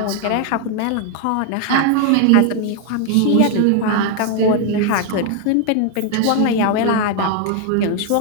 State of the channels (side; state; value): both; different; correlation 0.00